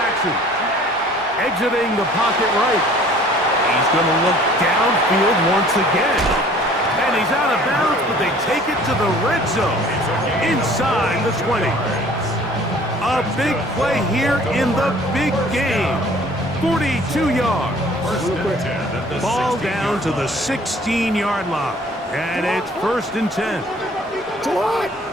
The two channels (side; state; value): both; normal; correlation 0.52